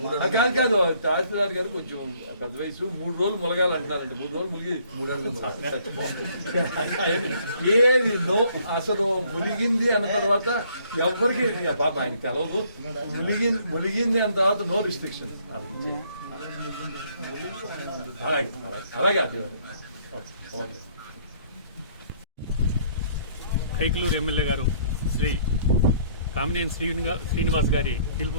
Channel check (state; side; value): inverted; both; correlation -0.63